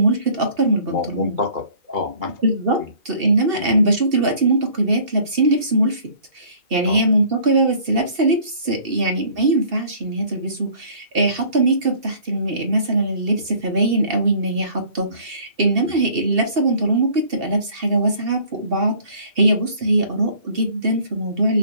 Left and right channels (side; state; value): left; late; 2.7 ms